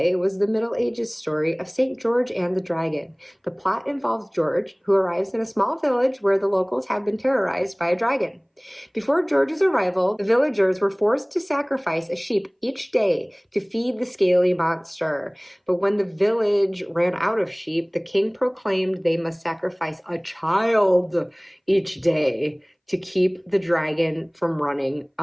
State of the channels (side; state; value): both; identical; correlation 1.00